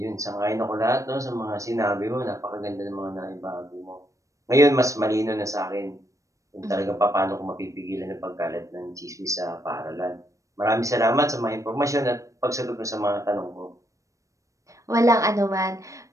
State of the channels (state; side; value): late; left; 0.16 ms